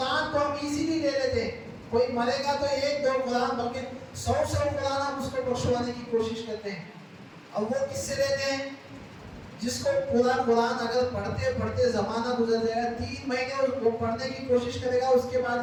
کو ہم ایزیلی لے لیتے ہیں۔ کوئی مرے گا تو 1-2 قرآن بلکہ 100 قرآن ہم اس کو بخشوانے کی کوشش کرتے ہیں، اور وہ کس سے لیتے ہیں؟ جس کو پورا قرآن اگر پڑھتے پڑھتے زمانہ گزر جائے گا، 3 مہینے وہ پڑھنے کی کوشش کرے گا، اس کے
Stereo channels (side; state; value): both; identical; correlation 1.00